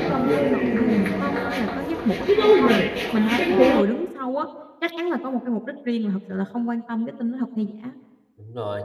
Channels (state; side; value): identical; both; correlation 1.00